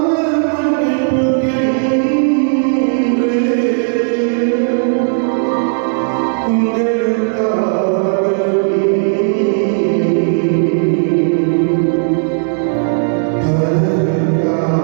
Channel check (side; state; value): left; silent; digital silence